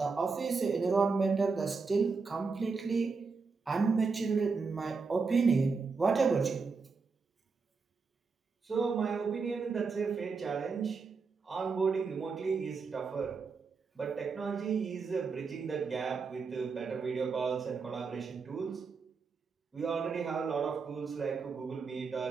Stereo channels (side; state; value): left; quieter; 4.8 dB